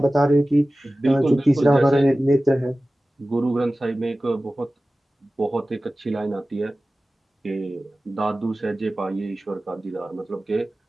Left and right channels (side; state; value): both; normal; correlation 0.96